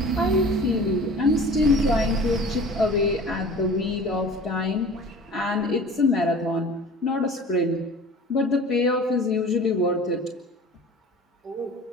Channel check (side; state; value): both; normal; correlation 0.42